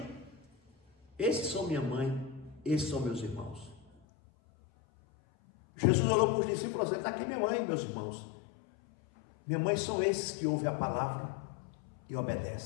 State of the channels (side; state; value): right; drops out; at 3.9 s